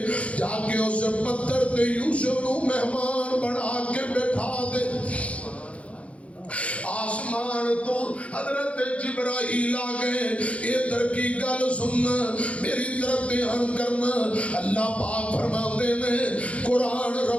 जाके उस पत्थर ते यूसुफ नु मेहमान बना के बैठा दे आसमान तो हजरत जिब्राइल आ गए इधर की गल सुनना मेरी तरफ ध्यान करना अल्लाह पाक फरमाते ने कुरान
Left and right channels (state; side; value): late; right; 0.063 ms